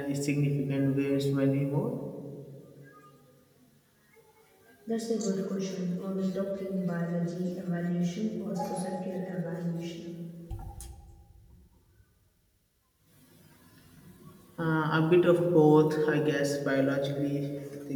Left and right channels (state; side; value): identical; both; correlation 1.00